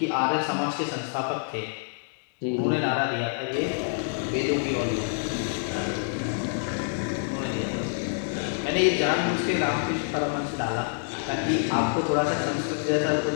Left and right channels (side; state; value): right; silent; 60 dB below the other